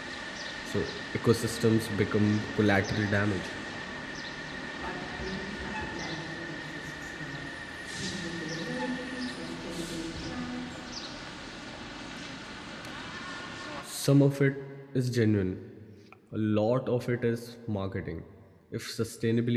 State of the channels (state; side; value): identical; both; correlation 1.00